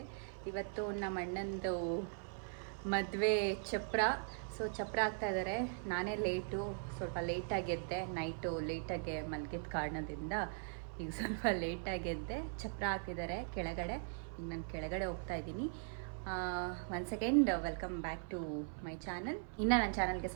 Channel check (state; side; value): silent; left; 51 dB below the other